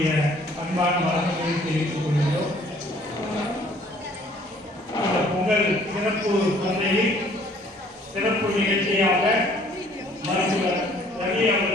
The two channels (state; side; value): normal; both; correlation 0.58